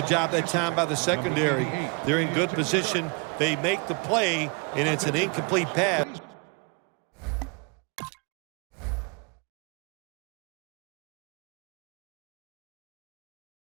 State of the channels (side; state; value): left; quieter; 32.9 dB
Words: job that time by the secondary. They're in good position. They make the play, and it's an incomplete pass.